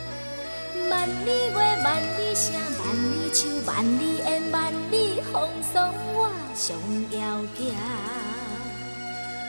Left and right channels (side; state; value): both; inverted; correlation -1.00